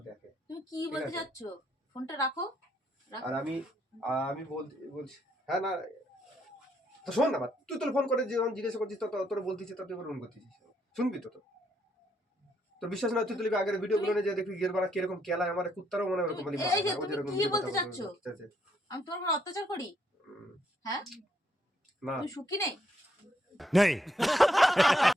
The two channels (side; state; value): both; normal; correlation 0.74